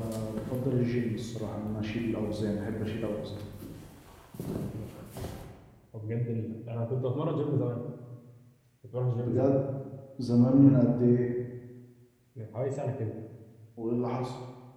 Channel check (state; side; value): identical; both; correlation 1.00